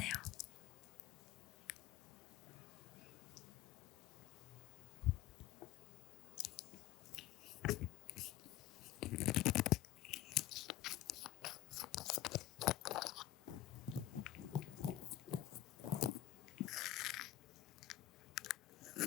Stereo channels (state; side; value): quieter; right; 14.2 dB